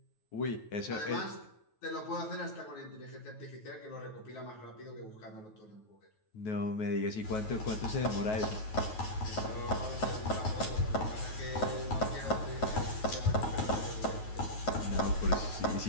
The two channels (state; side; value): late; right; 9.3 ms